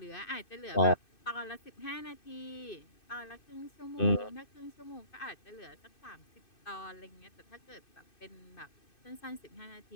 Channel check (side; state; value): right; late; 2.6 ms